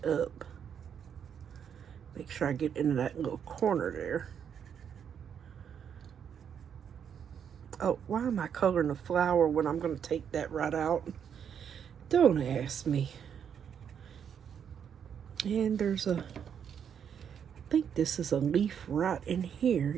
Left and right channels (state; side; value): quieter; left; 8.0 dB